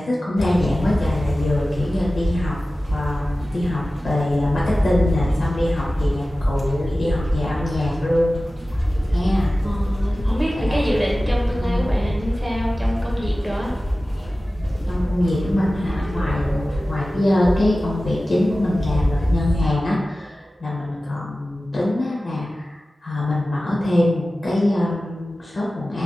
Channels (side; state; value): both; normal; correlation 0.96